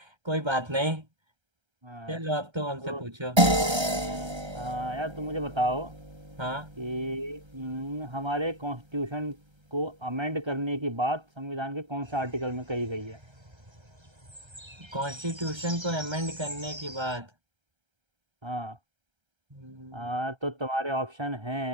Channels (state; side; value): late; left; 1.3 ms